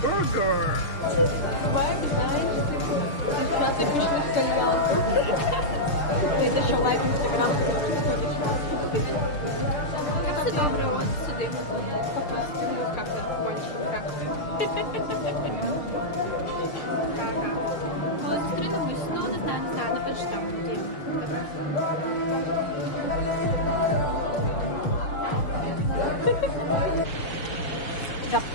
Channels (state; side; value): late; right; 6.6 ms